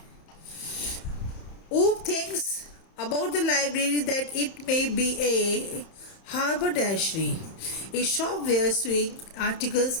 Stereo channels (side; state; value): right; late; 31 ms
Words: ऊप thinks about the library that it may be a haberdashery, a shop where sewing articles